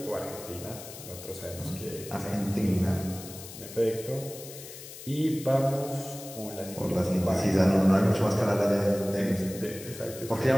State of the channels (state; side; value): noise; left; hiss, 14 dB below the sound